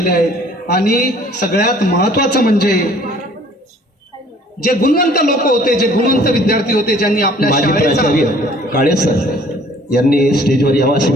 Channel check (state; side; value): normal; both; correlation 0.55